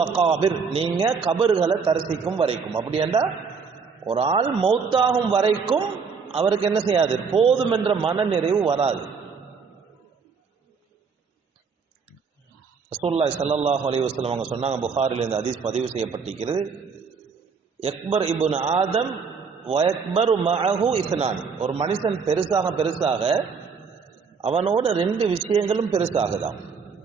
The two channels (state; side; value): quieter; left; 5.5 dB